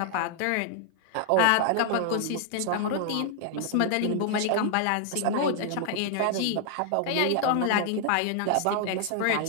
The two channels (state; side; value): different; both; correlation 0.00